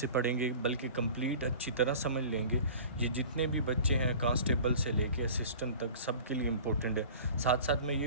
پڑھیں گے، بلکہ کمپلیٹ اچھی طرح سمجھ لیں گے۔ یہ جتنے بھی بچے ہیں کانسٹیبل سے لے کے اسسٹنٹ تک، سب کے لیے امپورٹنٹ ہے۔ ساتھ ساتھ میں یہ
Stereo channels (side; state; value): both; inverted; correlation -0.42